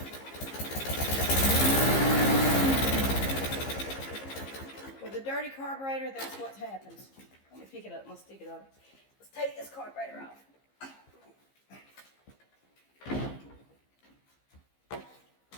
With a dirty carburetor, that's what happens. Let me pick it up and let's stick it up. Let's take this carburetor off.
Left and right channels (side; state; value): right; late; 15 ms